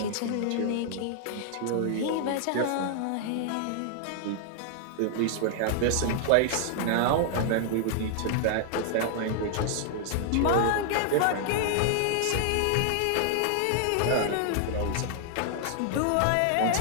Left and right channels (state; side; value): different; both; correlation -0.01